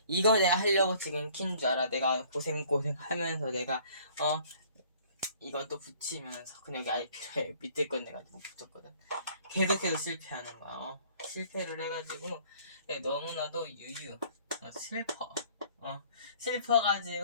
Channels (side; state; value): both; inverted; correlation -0.56